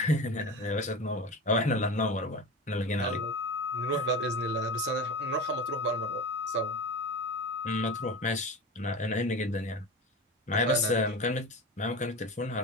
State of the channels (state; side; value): normal; both; correlation 0.28